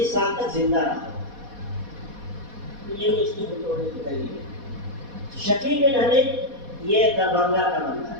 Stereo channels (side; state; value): left; late; 4.1 ms